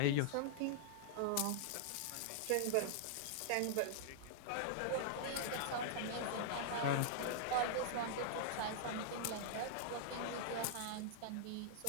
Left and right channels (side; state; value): both; different; correlation -0.01